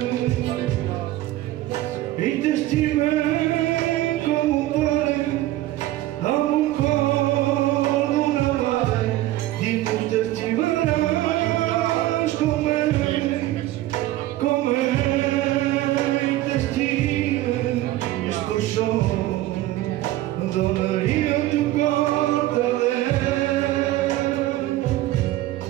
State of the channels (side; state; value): left; quieter; 15.5 dB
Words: e te estimei como pai a um colo na mãe digo te estimarás como te estima escuchou donaria tu corta